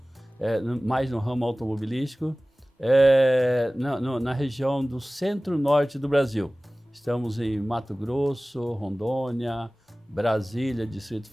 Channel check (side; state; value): both; normal; correlation 0.98